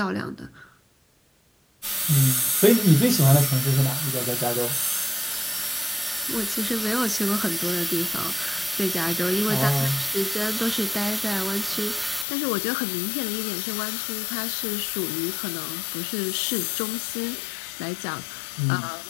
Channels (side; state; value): right; drops out; at 12.2 s